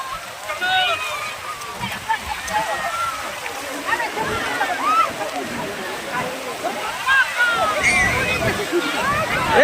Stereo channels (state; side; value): identical; both; correlation 1.00